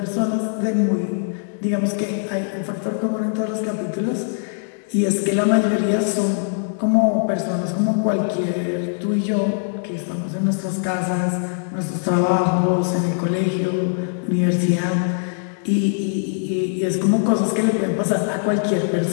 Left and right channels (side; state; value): right; silent; digital silence